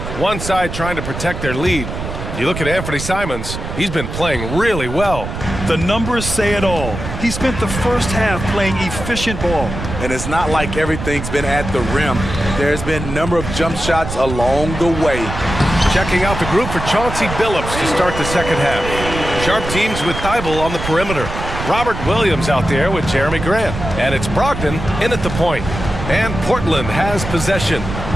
one side trying to protect their lead. You look at Anthony Simons, he's been playing really well. The numbers say it all. He spent the first half playing efficient ball. And it's not like everything's been at the rim. There's been a number of jump shots along the way. Checking out the group for Chauncey Billups to start the second half. Sharp teams with Thibault on the perimeter. Robert Williams out there with Jeremy Grant. And it's Brogdon in at the point. And Portland has possession.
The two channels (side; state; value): right; noise; rumble, 7 dB below the sound